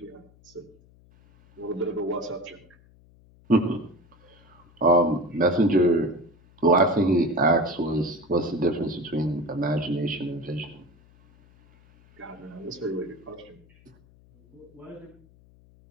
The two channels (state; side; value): noise; left; hum, 28 dB below the sound